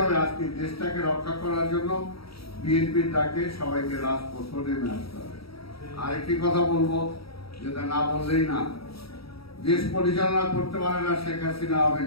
আজকে দেশটাকে রক্ষা করার জন্য বিএনপির ডাকে সবাইকে রাজপথে নেমে আসতে হবে। আরেকটি কথা বলবো, যেটা না বললেই না, দেশ পরিচালনা করতে পারে না শেখ হাসিনা, আওয়ামী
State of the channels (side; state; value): right; late; 0.76 ms